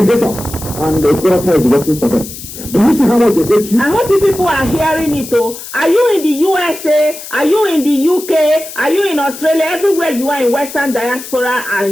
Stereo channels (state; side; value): noise; left; hiss, 12 dB below the sound